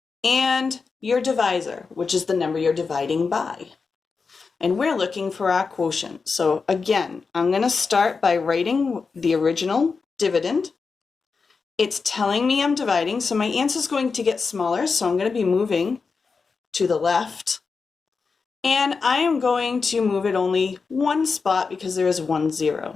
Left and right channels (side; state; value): right; quieter; 4.9 dB